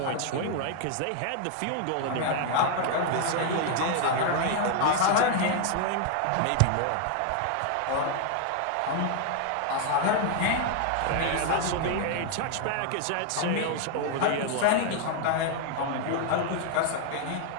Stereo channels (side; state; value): both; different; correlation 0.00